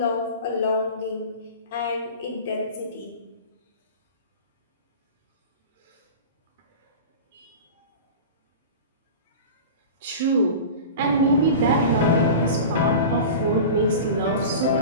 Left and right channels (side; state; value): both; inverted; correlation -0.33